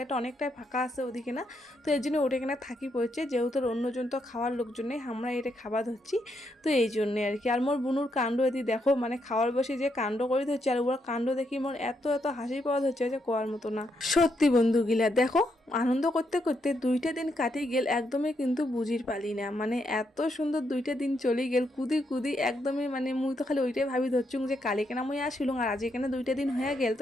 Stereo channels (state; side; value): normal; both; correlation 0.79